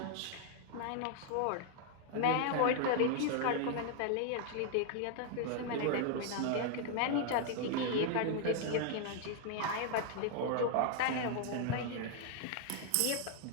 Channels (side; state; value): both; different; correlation 0.00